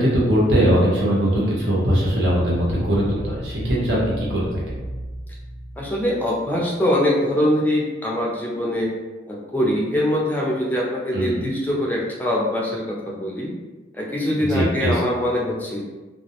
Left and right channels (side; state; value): both; normal; correlation 0.67